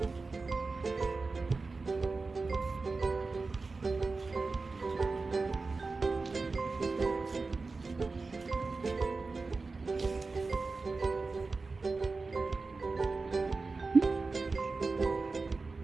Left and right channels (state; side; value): quieter; left; 3.9 dB